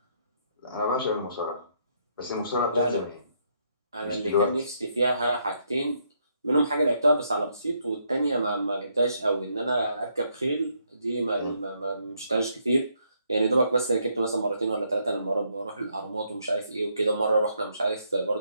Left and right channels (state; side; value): inverted; both; correlation -0.74